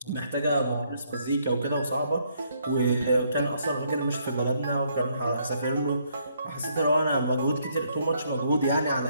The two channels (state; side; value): inverted; both; correlation -0.70